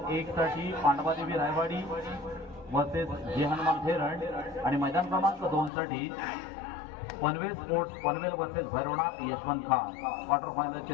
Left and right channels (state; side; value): drops out; right; at 5.7 s